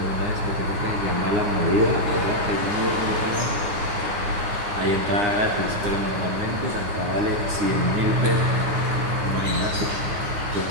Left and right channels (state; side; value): late; left; 9.7 ms